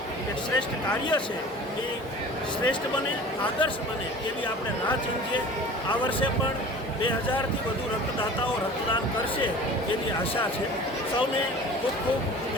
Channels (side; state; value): both; normal; correlation 0.41